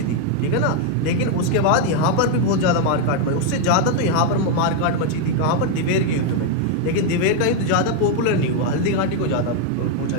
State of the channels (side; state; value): both; different; correlation 0.01